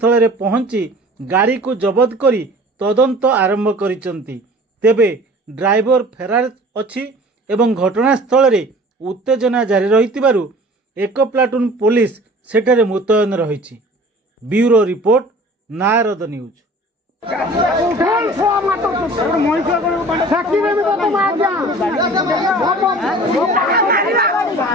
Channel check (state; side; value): normal; both; correlation 0.45